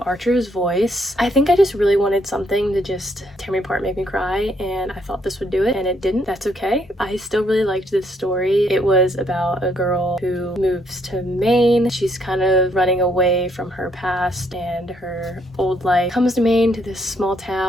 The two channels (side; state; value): both; normal; correlation 0.71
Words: Archer's Voice. I think I just really wanted something to just tear me apart, make me cry, and I thought this would do it, and it didn't. That's okay. I still really liked this story. It was about a girl who moves to Maine. She's kind of running away from her past and her old life. Comes to Maine, to this small